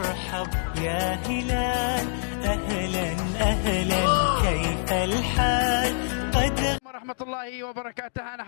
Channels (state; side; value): silent; right; digital silence